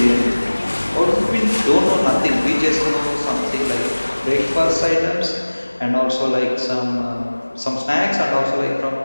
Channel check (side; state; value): both; inverted; correlation -1.00